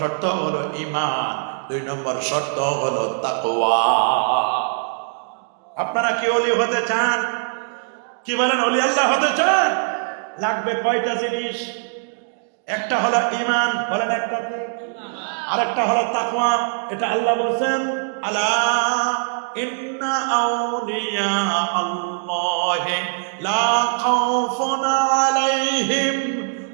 শর্ত হলো ঈমান, দুই নম্বর শর্ত হলো তাকওয়া। আপনারা কি ওলি হতে চান? কি বলেন, ওলি আল্লাহ হতে চান? লাগবে কয়টা জিনিস? একটা হলো ঈমান, বলেন একটা কি? আরেকটা হলো তাকওয়া। এটা আল্লাহ বলেন, আলা ইন্না আউলিয়া আল্লাহি লা খাউফুন আলাইহিম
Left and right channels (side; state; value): left; silent; digital silence